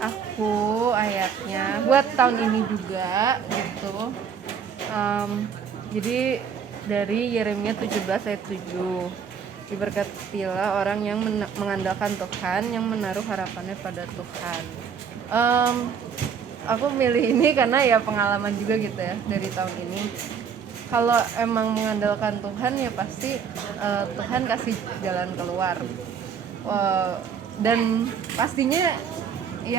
ayatnya buat tahun ini juga gitu. Jadi dari Yeremia 17 ayat 7. Diberkatilah orang yang mengandalkan Tuhan, yang menaruh harapannya pada Tuhan. Aku milih ini karena ya pengalaman juga gitu ya dari tahun ini. Kalau emang mengandalkan Tuhan ya pasti Tuhan kasih jalan keluar. Dan pastinya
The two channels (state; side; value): quieter; left; 7.0 dB